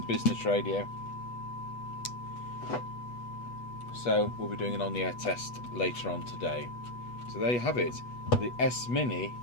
business radio. So we'll be doing an on-the-air test later on today. So there you have it, the S Mini,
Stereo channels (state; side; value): late; right; 8.2 ms